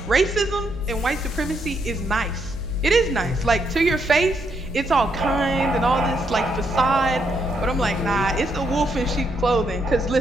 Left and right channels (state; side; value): noise; right; hum, 17 dB below the sound